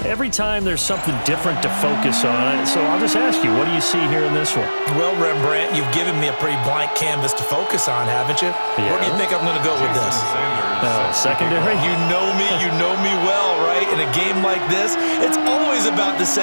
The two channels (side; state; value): both; inverted; correlation -1.00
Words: every time there's something different to focus on. So I'll just ask you, what do you see here in this one? Well, Rembrandt, you've given me a pretty blank canvas to focus on, haven't you? Yeah. Where do you think I'm going to go with this? Secondary? You know me well, right? In a game like this, it's always about the